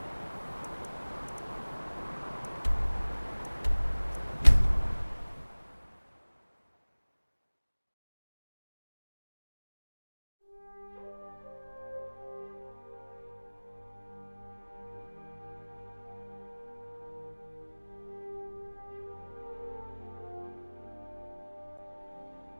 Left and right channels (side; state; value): both; inverted; correlation -1.00